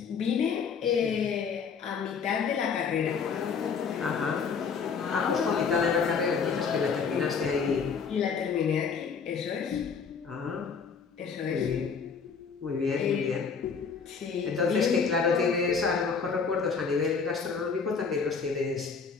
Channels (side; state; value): right; quieter; 5.8 dB